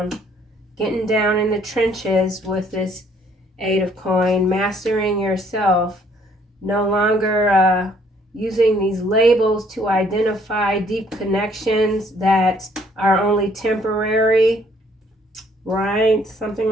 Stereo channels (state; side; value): normal; both; correlation 0.63